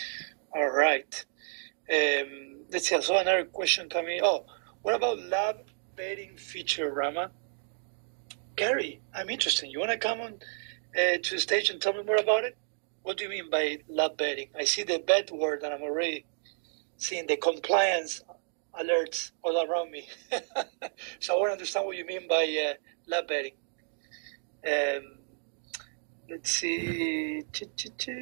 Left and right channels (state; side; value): silent; left; digital silence